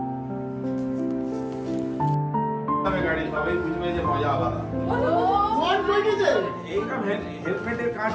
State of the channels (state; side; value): identical; both; correlation 1.00